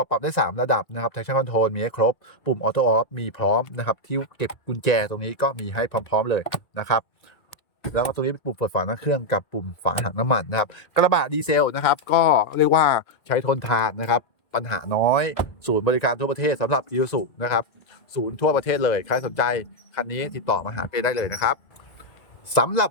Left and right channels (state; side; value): late; right; 1.9 ms